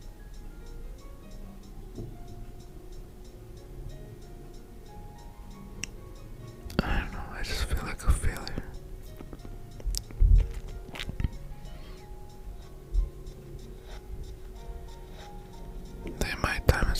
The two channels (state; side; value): identical; both; correlation 1.00